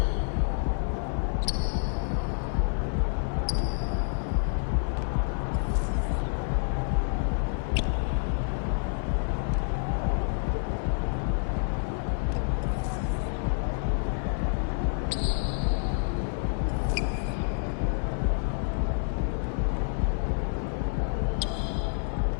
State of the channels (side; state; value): right; silent; 59 dB below the other